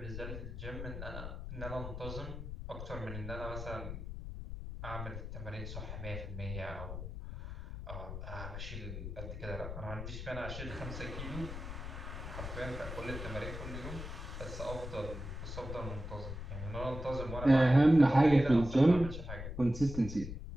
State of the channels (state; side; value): noise; left; rumble, 8 dB below the sound